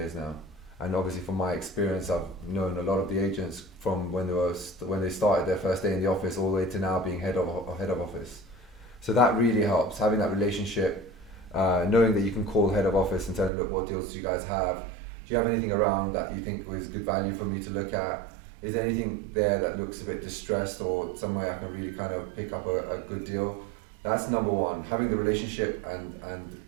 now, and obviously from my experience I've known a lot of the agents from when they started their first day in the office all the way to now being head of office. So that really helps, having that relationship, knowing that you can call head of office and tell them, look, what deals do you guys have? Do you have anything around that you think was good value for me to look at? Is there anything there that looks a bit distressed or some way I can really kind of pick up a good deal? That's number one, having the relationship and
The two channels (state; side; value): drops out; left; at 13.5 s